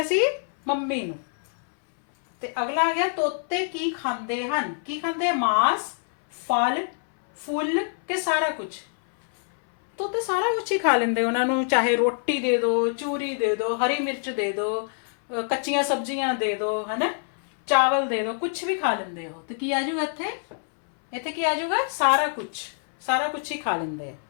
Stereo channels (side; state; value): right; silent; 62 dB below the other